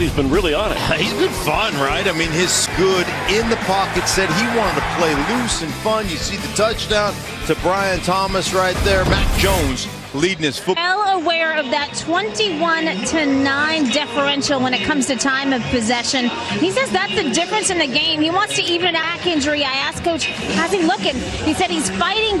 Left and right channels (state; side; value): identical; both; correlation 1.00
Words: he's been really on it. He's been fun, right? I mean, his good in the pocket said he wanted to play loose and fun. You see the touchdown to Brian Thomas right there. Mac Jones leading his football. Well aware of that 21-9 differential when it comes to time of possession. He says that's the difference in the game. He wants to even a back injury. I asked Coach, how's he looking? He said he's fighting